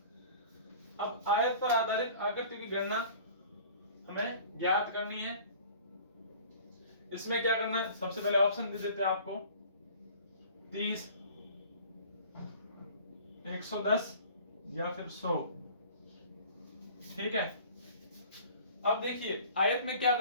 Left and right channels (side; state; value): both; inverted; correlation -0.46